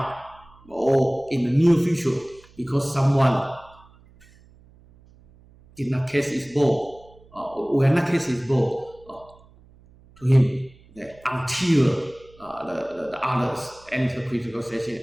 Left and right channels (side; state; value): right; noise; hum, 27 dB below the sound